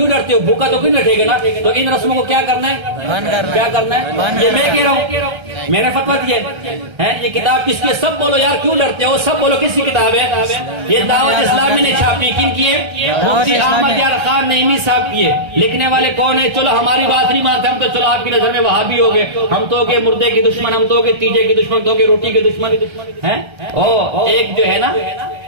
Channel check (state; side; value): late; left; 1.3 ms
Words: ڈرتے ہو؟ بھوکا تو کیوں رکھے گا نا. تو ان رسموں کو کیا کرنا ہے؟ کیا کرنا ہے؟ یہ میں کہہ رہا ہوں، میں نے فتویٰ دیا ہے. یہ کتاب کس کی؟ سب بولو یار، کیوں ڈرتے ہو؟ سب بولو کس کی کتاب ہے؟ یہ دعوت اسلامی نے چھاپی. کن کی ہے؟ مفتی احمد یار خان نعیمی صاحب کی ہے. لکھنے والے کون ہے؟ چلو ہماری بات نہیں مانتے ہم تو، چلو آپ کی نظر میں وہابی ہو گئے، ہم تو ہو گئے مردے کے دشمن، ہم تو ہو گئے تیجے کے دشمن، تو ہو گئے روٹی کے دشمن ہیں. ایک جو ہے نا